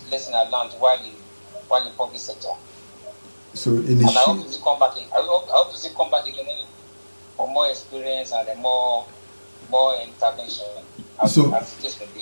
lesson I learned while in public sector. So and I hope to see come back. I hope to see come back again for more experience and more intervention.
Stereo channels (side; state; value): both; inverted; correlation -1.00